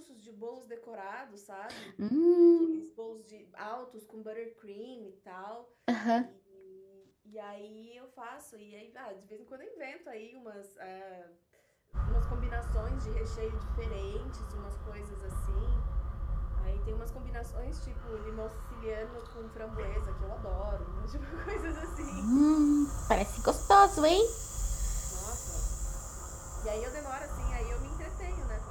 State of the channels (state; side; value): identical; both; correlation 1.00